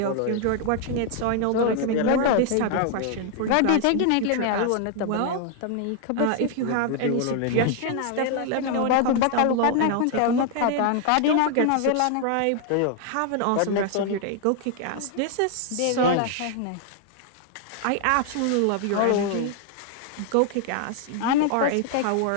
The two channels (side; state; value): both; different; correlation 0.00